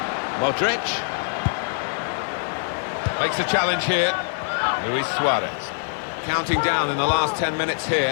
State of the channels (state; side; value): silent; right; digital silence